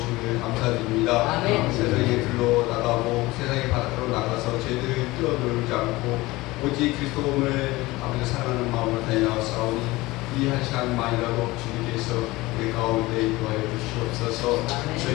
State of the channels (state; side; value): quieter; right; 20.2 dB